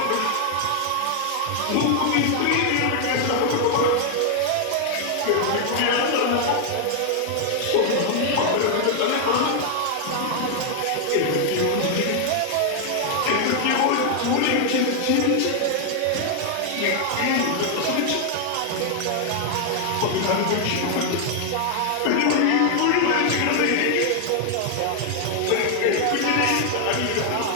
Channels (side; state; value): both; different; correlation 0.00